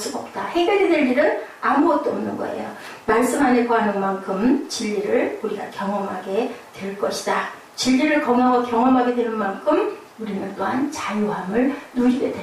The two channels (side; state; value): both; identical; correlation 1.00